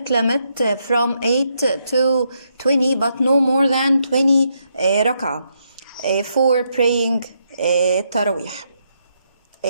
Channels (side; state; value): both; inverted; correlation -0.78